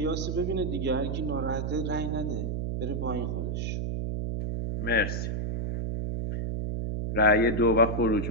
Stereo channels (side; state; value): right; noise; hum, 2 dB below the sound